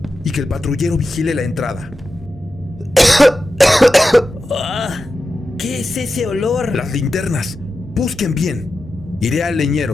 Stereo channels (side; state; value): both; normal; correlation 0.91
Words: y que el patrullero vigile la entrada. ¿Qué es ese olor? Las linternas. Busquen bien. Iré al